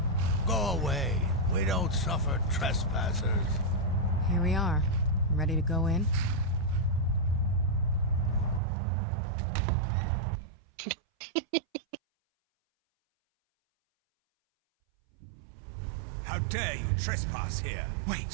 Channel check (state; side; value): drops out; left; at 8.6 s